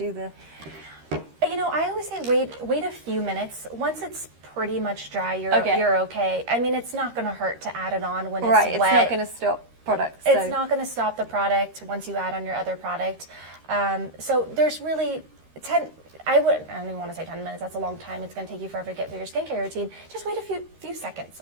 the... You know, I always say wait a few minutes. Once it's pretty much dry, you're okay. I mean, it's not going to hurt to add it on when it's wet. It's not going to stop. Products, it's not going to stop the product once you add on your other product. So there's really I don't even want to say 10 minutes. That's a long time. It's going to take you forever to get through your skincare routine. Just wait a few seconds,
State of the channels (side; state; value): left; late; 13 ms